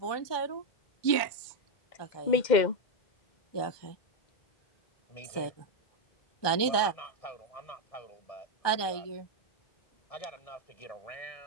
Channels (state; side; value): late; right; 1.2 ms